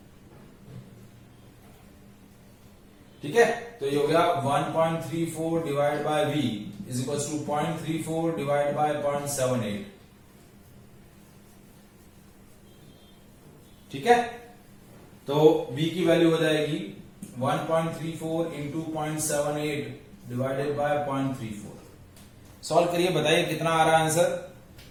ठीक है, तो ये हो गया 1.34 divide by v is equal to 0.34 divide by 0.78। ठीक है, तो v की वैल्यू हो जाएगी 1.34 इंटू 0.78 डिवाइडेड बाय 0.34। सॉल्व करिए, बताइए कितना आ रहा है आंसर?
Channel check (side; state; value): both; identical; correlation 1.00